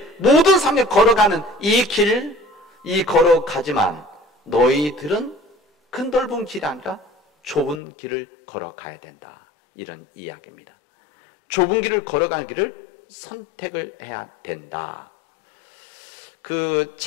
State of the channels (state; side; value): drops out; right; at 7.8 s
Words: 모든 사람들이 걸어가는 이 길, 걸어가지만 너희들은 그 넓은 길이 아니라 좁은 길을 걸어가야 된다, 이런 이야기입니다. 좁은 길을 걸어가는 길을 선택을 해야 된다. 그